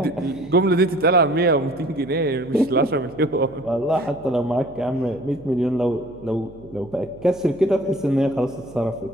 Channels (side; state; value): right; noise; hum, 21 dB below the sound